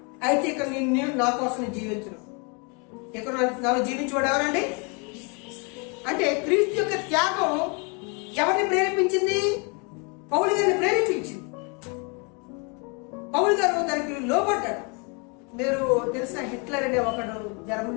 అయితే ఇక్కడ నేను నా కోసం జీవించను. ఇక్కడ నాలో జీవించేవాడు ఎవరండి? అంటే క్రీస్తు యొక్క త్యాగం ఎవరిని ప్రేరేపించింది? పౌలు గారిని ప్రేరేపించింది. పౌలు గారు దానికి లోబడ్డాడు. మీరు తెలిసిన హిట్లర్ అనే ఒకడు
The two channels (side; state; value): right; quieter; 33.7 dB